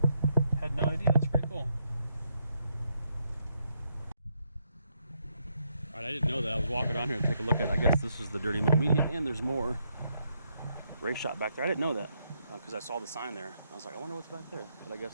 Had no idea, that's pretty cool. Alright, I didn't know that. I was walking on here to take a look at it. I guess this is the Dirty Mo Media, and there's more race shop back there. I didn't know that because I saw the sign there. I was like, I wonder what's back there. But I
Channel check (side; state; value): both; inverted; correlation -0.78